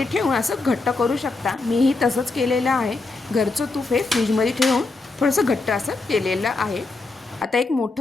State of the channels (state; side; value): quieter; right; 3.5 dB